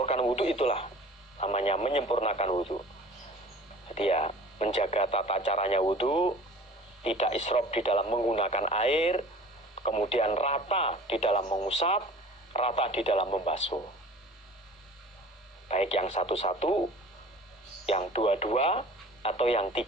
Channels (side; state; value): both; normal; correlation 0.44